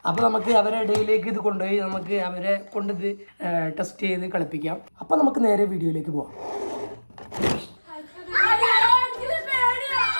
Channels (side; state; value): both; inverted; correlation -1.00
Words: അപ്പോൾ നമുക്ക് അവരുടെ ഇടയിലേക്ക് ഇത് കൊണ്ടുപോയി നമുക്ക് അവരെ കൊണ്ട് ഇത് ടെസ്റ്റ് ചെയ്ത് കളിപ്പിക്കാം. അപ്പോൾ നമുക്ക് നേരെ വീഡിയോയിലേക്ക് പോവാം.